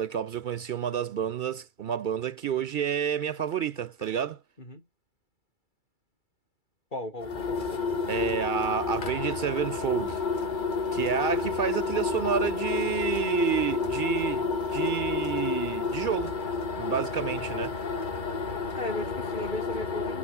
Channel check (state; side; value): late; right; 2.3 ms